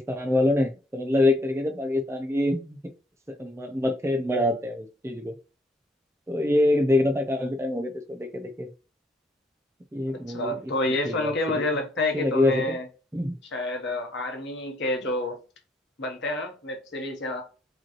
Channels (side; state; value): both; normal; correlation 0.68